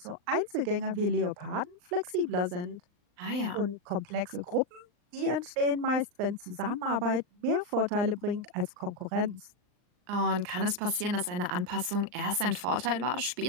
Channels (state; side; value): late; left; 39 ms